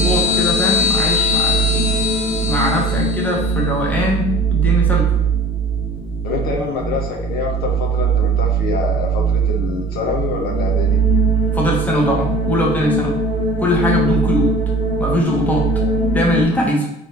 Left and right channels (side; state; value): both; normal; correlation 0.45